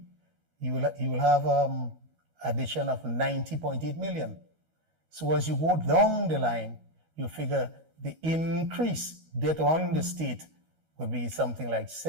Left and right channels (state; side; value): late; left; 13 ms